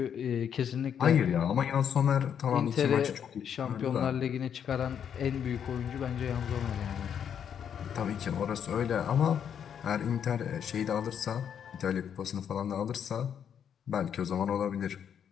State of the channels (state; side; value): quieter; right; 8.3 dB